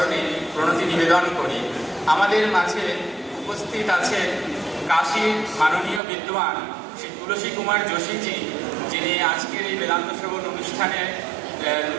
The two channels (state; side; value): drops out; left; at 6.0 s